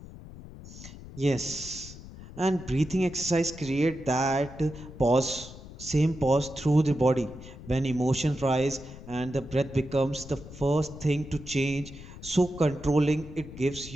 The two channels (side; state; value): left; noise; rumble, 15 dB below the sound